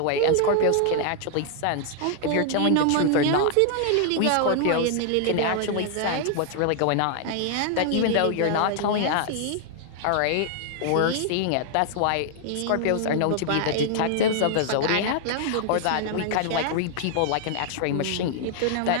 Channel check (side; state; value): both; different; correlation 0.00